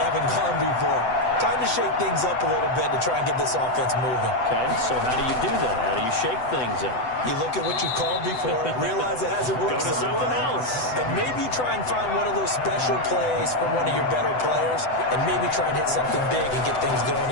gone before. Time to shake things up a little bit to try and get this offense moving. Okay, so how do you do that? How do you shake things up? You look at what you called before, realize it hasn't worked Go to so something well, else. and maybe you try and find one of those special plays from one of your better players, and maybe try and hit something big and get things going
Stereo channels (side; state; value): right; late; 7.9 ms